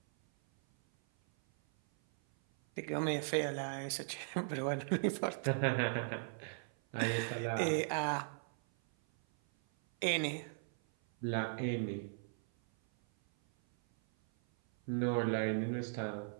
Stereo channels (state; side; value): silent; left; 53 dB below the other